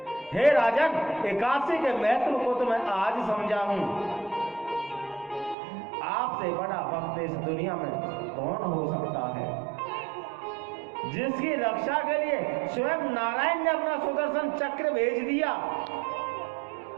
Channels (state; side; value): drops out; left; at 5.6 s